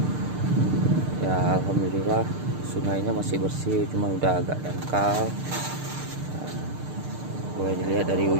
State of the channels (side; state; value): left; late; 6.6 ms